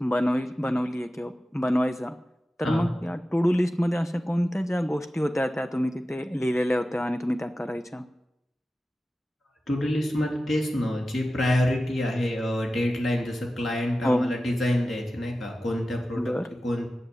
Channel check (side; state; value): both; normal; correlation 0.94